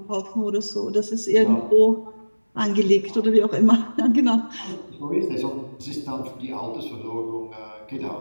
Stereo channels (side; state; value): both; inverted; correlation -1.00